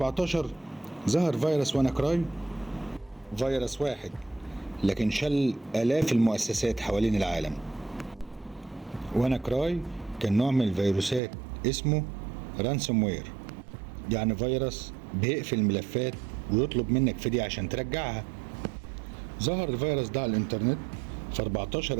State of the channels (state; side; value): drops out; left; at 11.2 s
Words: ظهر فيروس ويناكراي، فيروس واحد لكن شل آلاف المؤسسات حوالين العالم. ويناكراي كان نوع من الفيروسات اسمه رانسوم وير، يعني فيروس بيقفل الملفات ويطلب منك فدية عشان ترجعها. ظهر الفيروس ده على الانترنت في